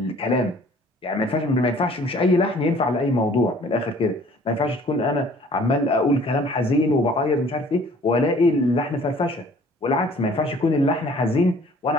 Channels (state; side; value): normal; both; correlation 0.54